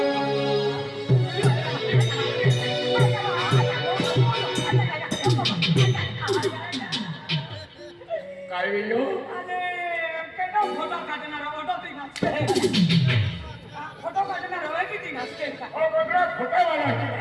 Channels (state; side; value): identical; both; correlation 1.00